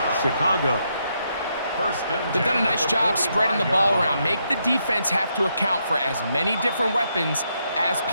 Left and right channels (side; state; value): both; inverted; correlation -0.78